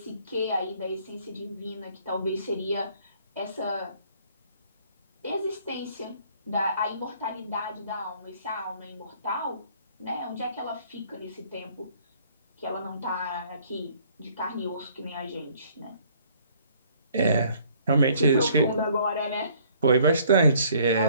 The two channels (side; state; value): both; inverted; correlation -0.60